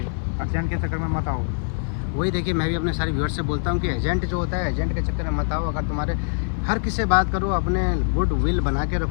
अर्जेंट के चक्कर में मत आओ। वही देखिए, मैं भी अपने सारे व्यूअर्स से बोलता हूँ कि एजेंट जो होता है, एजेंट के चक्कर में मत आओ। अगर तुम्हारे हर किसी से बात करो, अपने गुड विल बना के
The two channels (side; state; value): right; silent; 56 dB below the other